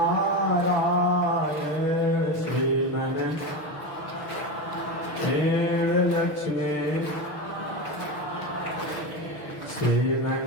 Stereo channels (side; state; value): right; late; 6.4 ms